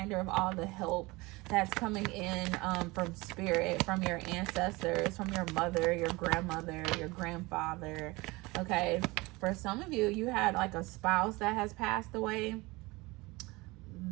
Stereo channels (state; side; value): quieter; left; 22.9 dB